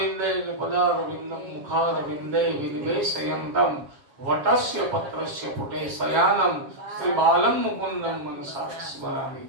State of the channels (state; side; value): late; left; 7.2 ms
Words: પદારવિંદમ મુખારવિંદે વિનિવેશયંતમ વટસ્ય પત્રસ્ય પુટે શયાનમ શ્રી બાલમ મુકુંદમ મનસા સ્મરામિ.